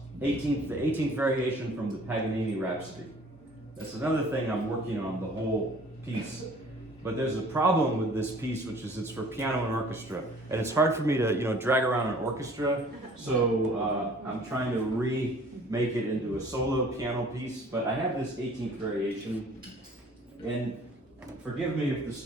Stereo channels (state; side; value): normal; both; correlation 0.52